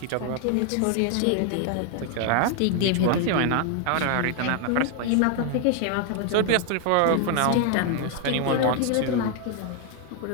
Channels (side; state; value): both; different; correlation 0.00